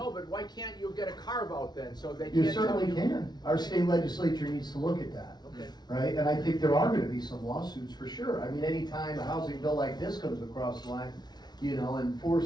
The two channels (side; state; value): right; late; 0.20 ms